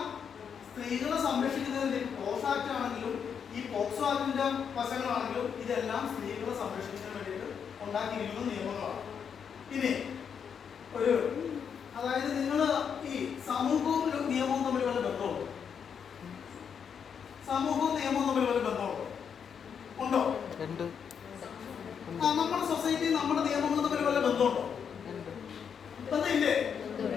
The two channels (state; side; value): quieter; right; 7.2 dB